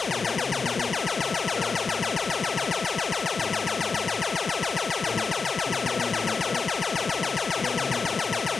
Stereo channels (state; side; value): quieter; right; 4.8 dB